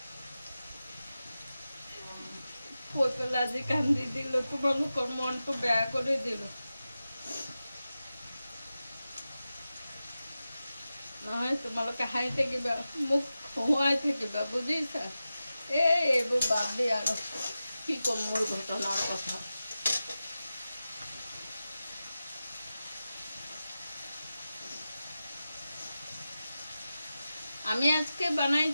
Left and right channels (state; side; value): inverted; both; correlation -0.93